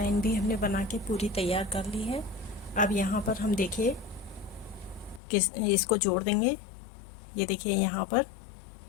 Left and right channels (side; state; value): right; drops out; at 5.2 s